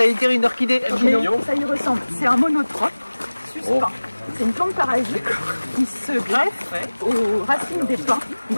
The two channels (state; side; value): inverted; both; correlation -1.00